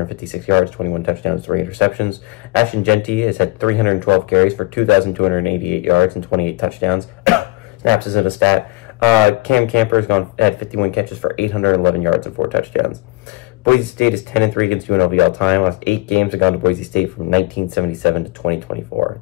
yards, 21 touchdowns, 3 interceptions. Ashton Genty has had 312 carries for 2,288 yards and 28 touchdowns. Snaps isn't a stat. Cam Camper has had 51 catches for 811 yards and 4 touchdowns. Boise State is 10-3 against UNLV all time. Last 8 games have gone to Boise State from 1977 to 2024.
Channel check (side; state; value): right; quieter; 21.6 dB